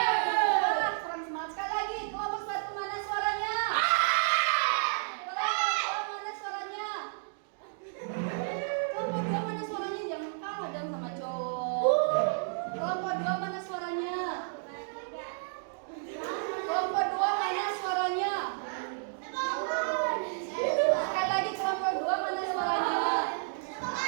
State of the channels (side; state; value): left; silent; digital silence